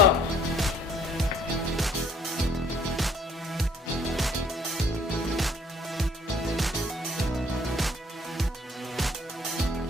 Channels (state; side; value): normal; both; correlation 0.60